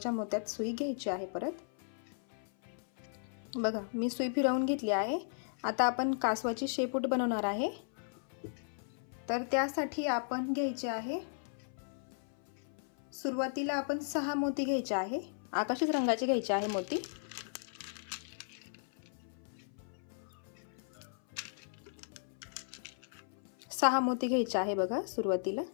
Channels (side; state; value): right; silent; 54 dB below the other